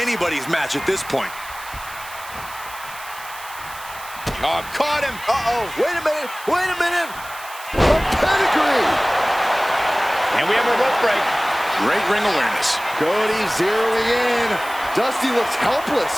match at this point. Oh, caught him. Uh-oh. Wait a minute. Wait a minute. A pedigree. And we have a rope break. Great ring awareness. Cody zeroing in. Dusty looks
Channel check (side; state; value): right; noise; hiss, 16 dB below the sound